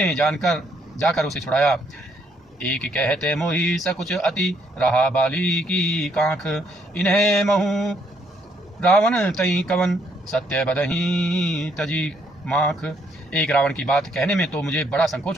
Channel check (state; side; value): normal; both; correlation 0.71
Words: जाकर उसे छुड़ाया। एक कहते मोही सकुच अति, रहा बाली की कांख। इन्हें महू रावण तई कवन, सत्य बदही तजी माख। एक रावण की बात कहने में तो मुझे बड़ा संकोच